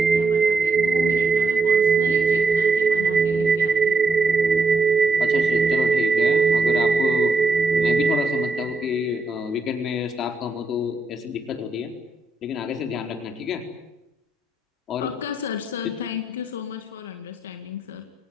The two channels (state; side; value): quieter; left; 3.2 dB